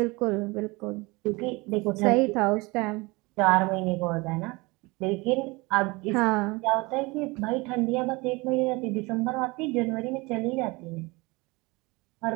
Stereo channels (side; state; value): left; quieter; 24.7 dB